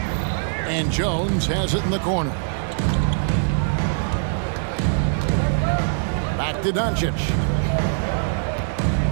And Jones has it in the corner. Back to Doncic.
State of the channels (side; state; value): left; silent; digital silence